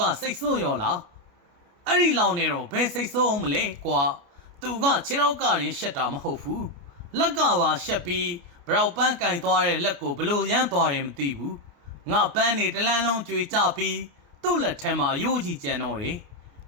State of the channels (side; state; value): left; late; 29 ms